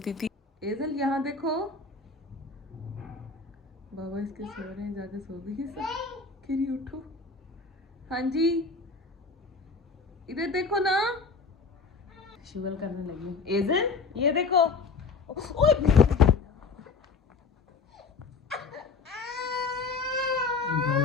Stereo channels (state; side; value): quieter; right; 4.5 dB